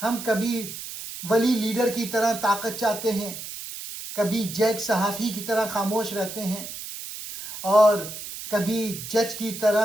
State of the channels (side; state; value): right; noise; hiss, 10 dB below the sound